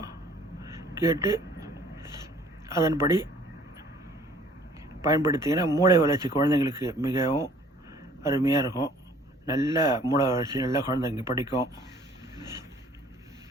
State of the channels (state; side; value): normal; both; correlation 0.55